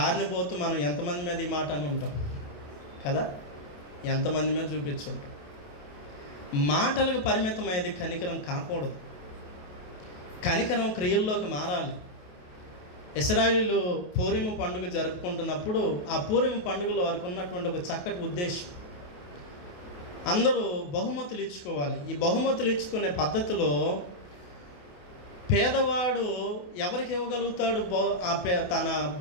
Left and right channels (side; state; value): right; late; 28 ms